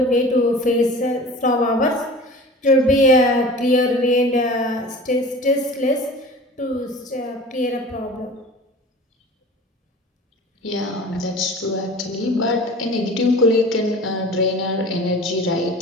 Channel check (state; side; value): normal; both; correlation 0.40